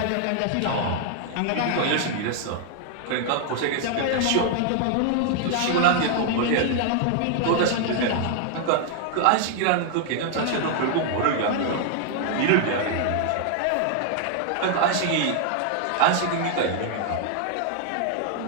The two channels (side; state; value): both; different; correlation 0.00